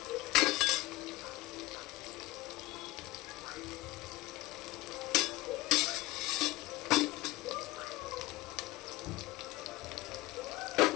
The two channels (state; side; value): quieter; right; 19.5 dB